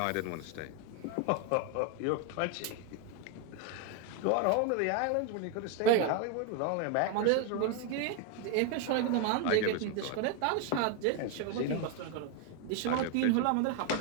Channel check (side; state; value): both; different; correlation 0.01